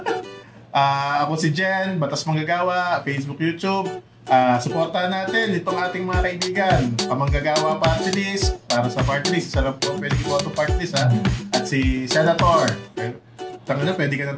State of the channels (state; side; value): identical; both; correlation 1.00